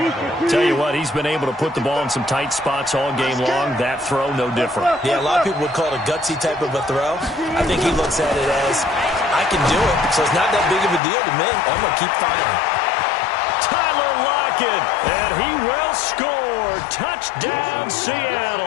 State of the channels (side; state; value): right; drops out; at 11.0 s